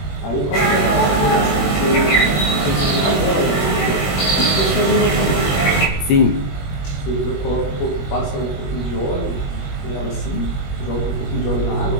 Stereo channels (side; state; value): right; late; 21 ms